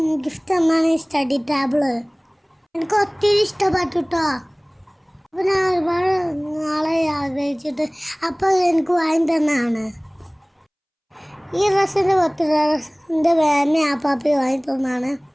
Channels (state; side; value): identical; both; correlation 1.00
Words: ഗിഫ്റ്റ് തന്നാണ് ഈ സ്റ്റഡി ടേബിള്. എനിക്ക് ഒത്തിരി ഇഷ്ടപ്പെട്ടു കേട്ടോ. അപ്പോൾ ഞാൻ ഒരുപാട് നാളെ ആഗ്രഹിച്ചിട്ട് അപ്പോൾ എനിക്ക് വാങ്ങി തന്നാണ്. ഈ ഡ്രസ്സിൻ്റെ എൻ്റെ മാമി ആപ്പാപ്പി വാങ്ങി തന്നാണ്.